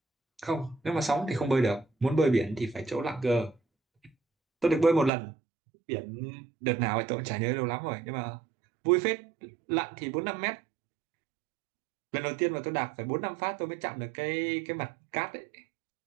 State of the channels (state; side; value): drops out; left; at 5.1 s